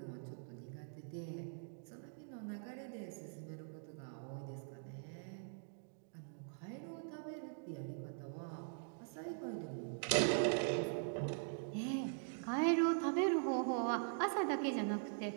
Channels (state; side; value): silent; left; digital silence